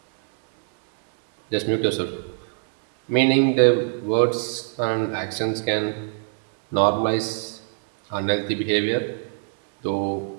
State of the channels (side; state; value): left; silent; 63 dB below the other